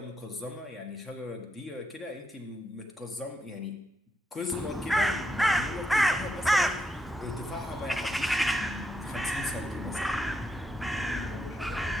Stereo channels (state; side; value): normal; both; correlation 0.81